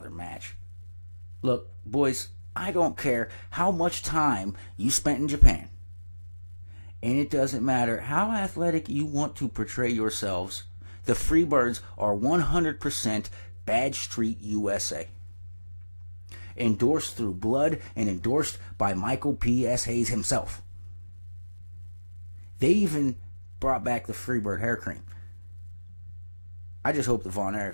match. Look, boys, I don't care how much time you spent in Japan. And it doesn't matter how athletic you want to portray yourselves, the Freebirds are 100% Badge Street USA. Endorsed through blood and endorsed by Michael P.S. Hayes himself. They even brought back the Freebird hair cream. I just hope the Von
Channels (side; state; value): both; inverted; correlation -1.00